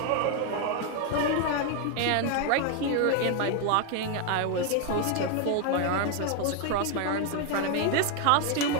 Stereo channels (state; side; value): different; both; correlation 0.00